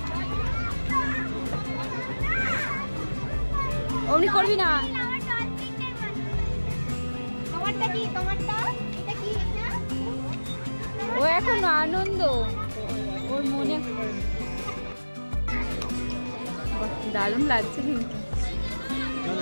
অমনি করবি না। ও এখন আনন্দ, ওর মনে দারুণ লাগছে কিন্তু।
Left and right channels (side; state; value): both; inverted; correlation -1.00